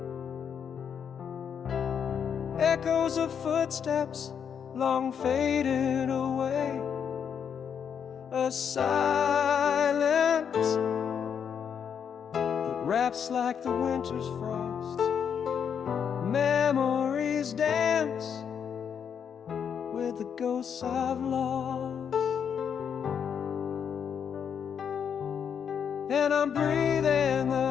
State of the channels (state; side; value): quieter; right; 7.6 dB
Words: echoes of footsteps long faded away. A silence that wraps like the winter's frost. Memories dance with the ghosts I've lost. And I'm breathing